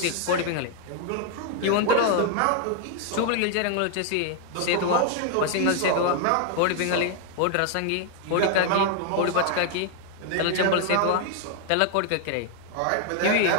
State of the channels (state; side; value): different; both; correlation 0.00